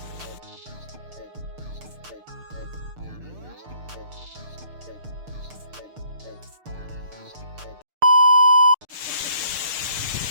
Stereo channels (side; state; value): left; late; 6.6 ms